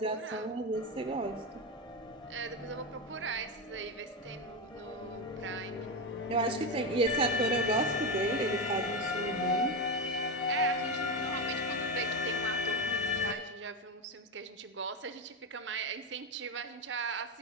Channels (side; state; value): both; normal; correlation 0.12